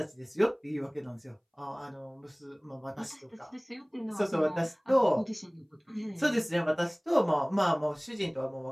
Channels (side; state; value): both; identical; correlation 1.00